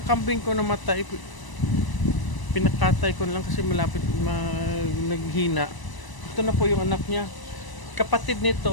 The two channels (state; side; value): late; right; 1.0 ms